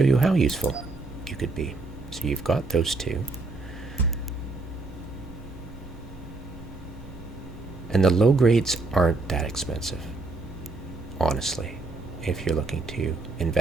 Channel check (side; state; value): left; quieter; 3.4 dB